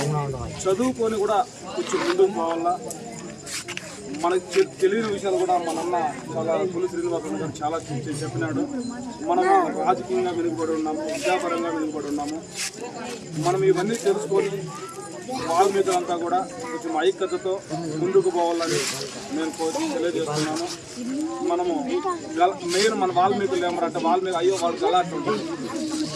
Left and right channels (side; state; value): both; identical; correlation 1.00